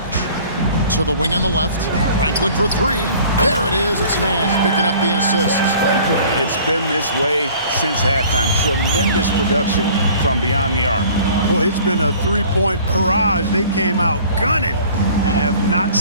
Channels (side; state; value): both; inverted; correlation -0.50